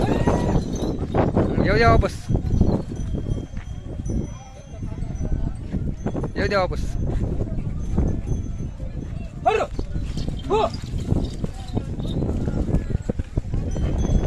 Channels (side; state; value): both; identical; correlation 1.00